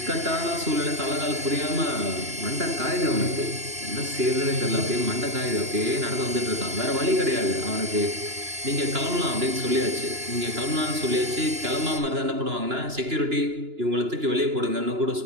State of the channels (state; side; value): late; left; 2.9 ms